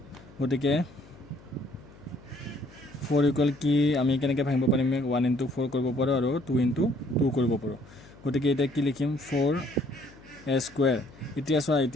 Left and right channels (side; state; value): left; noise; hum, 22 dB below the sound